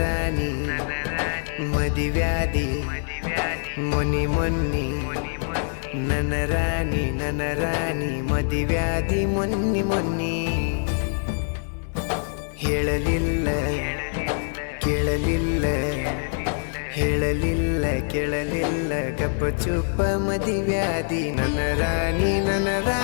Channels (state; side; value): silent; right; digital silence